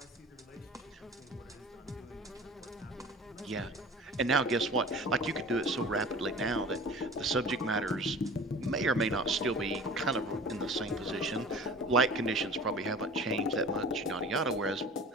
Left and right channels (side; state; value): both; normal; correlation 0.41